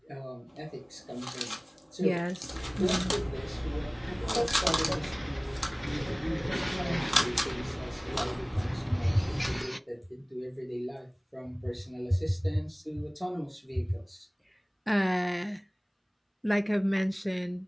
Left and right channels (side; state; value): both; identical; correlation 1.00